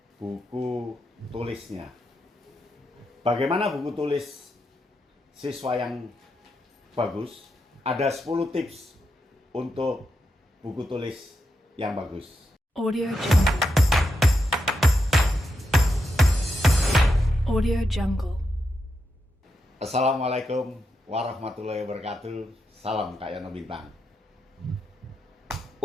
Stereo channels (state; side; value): normal; both; correlation 0.85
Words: buku tulisnya. Bagaimana buku tulis siswa yang bagus? Ada 10 tips untuk buku tulis yang bagus. Audio Jungle. Audio Jungle. Assalamualaikum warahmatullahi wabarakatuh. Salam Kak Yono Bintang.